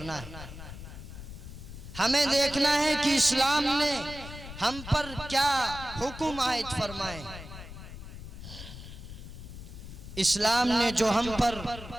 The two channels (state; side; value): noise; left; rumble, 12 dB below the sound